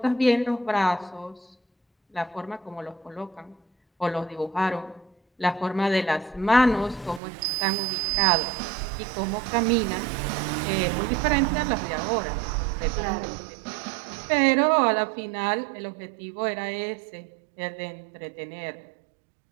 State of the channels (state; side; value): drops out; left; at 7.2 s